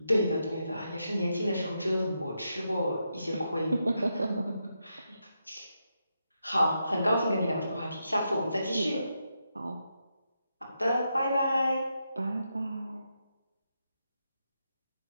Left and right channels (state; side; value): inverted; both; correlation -0.84